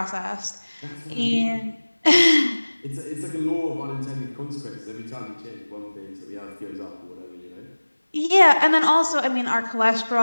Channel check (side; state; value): both; inverted; correlation -1.00